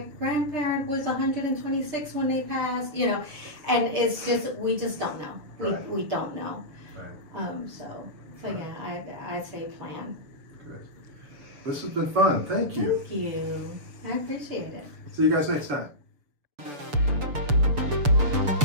grandparent was 126 when they passed, and it's just, we just don't know. We don't know. Right. So yeah, I say plan. Good. This has been fun. Thank you. Thank you. I appreciate it. See you guys next time.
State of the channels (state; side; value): late; left; 6.9 ms